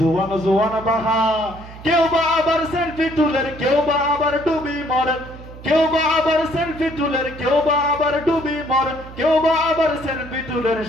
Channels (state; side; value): noise; right; hum, 16 dB below the sound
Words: জোয়ান বাহা কেউ বা আবার সেলফি তুলের কেউ বা আবার ডুবি মরে কেউ বা আবার সেলফি তুলের কেউ বা আবার ডুবি মরে কেউ বা আবার সেলফি তুলের